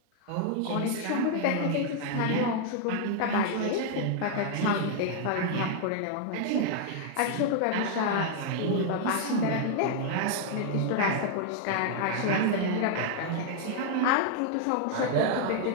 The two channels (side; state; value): both; different; correlation 0.00